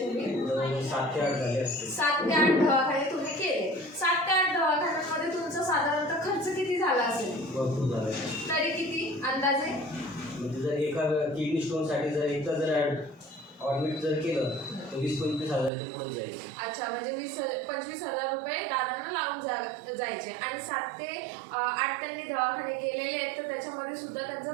7 ते 8 झाले असते. 7 ते 8 दवाखाने तुम्ही केले. 7 ते 8 दवाखान्यांमध्ये तुमचा साधारणतः खर्च किती झाला असेल? भरपूर झालं. तरी किती अंदाजे? म्हणजे जर एका किडनी स्टोनसाठी जर एकदा जर ॲडमिट जर केलं तर 20-25 हजाराच्या पुढे जाईल. अच्छा. म्हणजे 20-25 हजार रुपये दादांना लागून जायचे. आणि 7 ते 8 त्यांनी दवाखाने केलेले आहेत तर त्याच्यामध्ये सुद्धा त्यांचा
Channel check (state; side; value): drops out; left; at 15.7 s